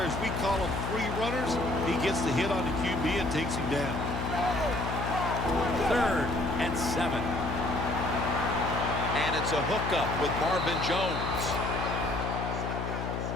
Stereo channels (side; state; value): left; noise; hum, 3 dB below the sound